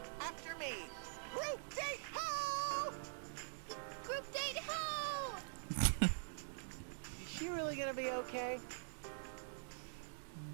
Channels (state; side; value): silent; left; digital silence